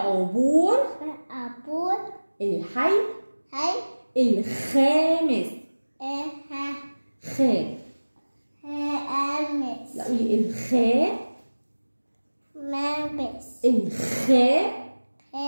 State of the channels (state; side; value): inverted; both; correlation -1.00